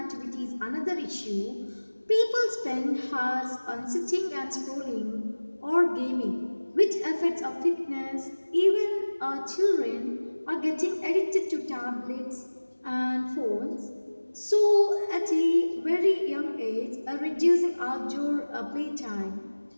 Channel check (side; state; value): both; inverted; correlation -1.00